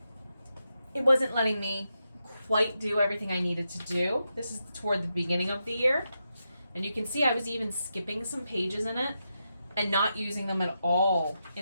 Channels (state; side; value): inverted; both; correlation -0.86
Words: letting me quite do everything I needed to do. This is toward the beginning of the year, and you can see I was even skipping some pages in it and not using them at all